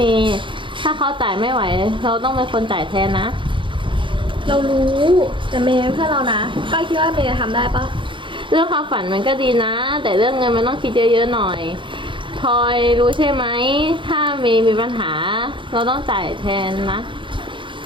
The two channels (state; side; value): late; left; 0.24 ms